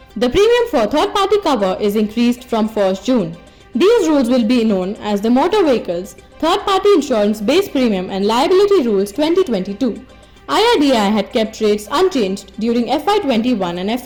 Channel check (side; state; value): both; identical; correlation 1.00